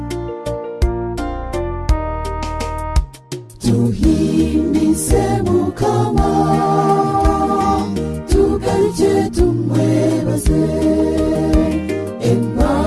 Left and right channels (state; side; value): identical; both; correlation 1.00